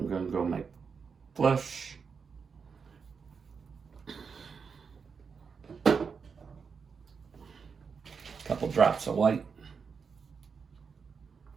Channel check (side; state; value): left; quieter; 5.7 dB